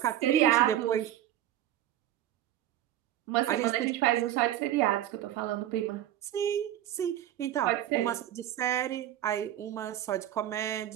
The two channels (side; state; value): left; quieter; 12.4 dB